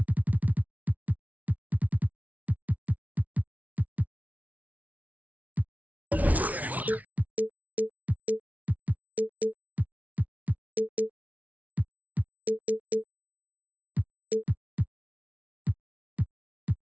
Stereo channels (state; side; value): late; left; 0.072 ms